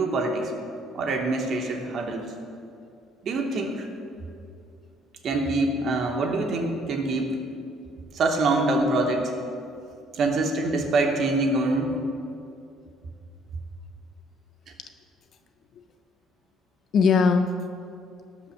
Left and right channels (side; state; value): both; normal; correlation 0.63